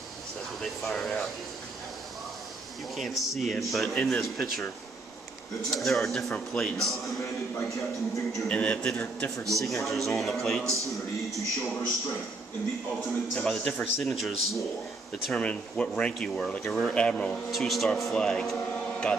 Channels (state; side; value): quieter; left; 3.3 dB